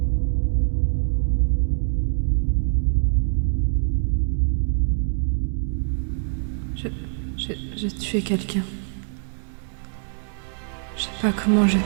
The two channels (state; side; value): silent; left; 63 dB below the other